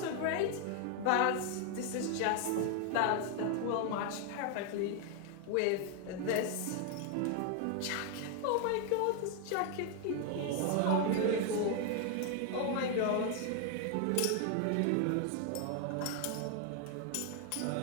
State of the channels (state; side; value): different; both; correlation 0.00